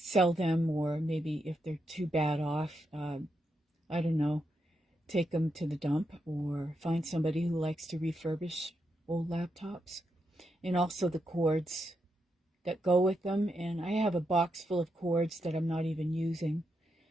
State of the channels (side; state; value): both; normal; correlation 0.83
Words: them, or maybe if they're too bad off, I don't know, take them to the dump or find somebody who likes to refurbish old laptops. And also the cords that go with them. And I have a box full of cords that I'm not even using.